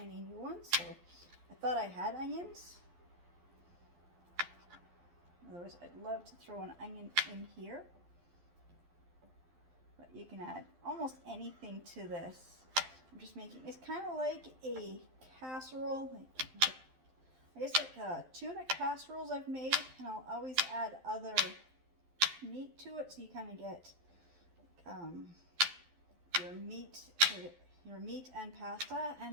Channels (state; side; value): late; left; 12 ms